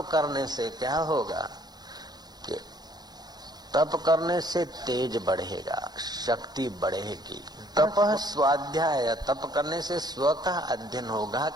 करने से क्या होगा कि तप करने से तेज बढ़ेगा, शक्ति बढ़ेगी। तपः स्वाध्याय, तप करने से स्व का अध्ययन होगा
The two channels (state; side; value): late; left; 0.19 ms